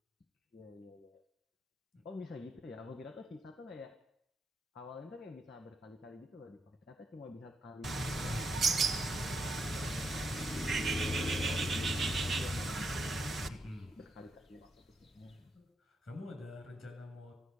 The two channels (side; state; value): both; normal; correlation 0.79